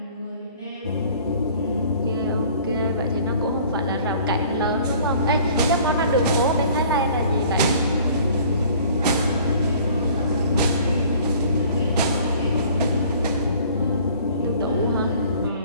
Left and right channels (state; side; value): inverted; both; correlation -0.52